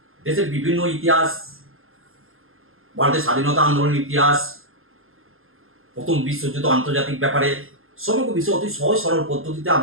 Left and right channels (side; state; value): left; late; 0.60 ms